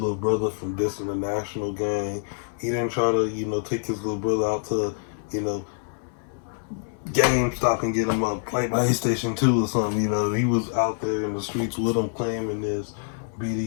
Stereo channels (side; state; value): right; silent; 61 dB below the other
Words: brother from dissing the national gang. He didn't try to, take his little brother out to, GameStop and get him a PlayStation 2 or something. He was out there in the streets with him, claiming this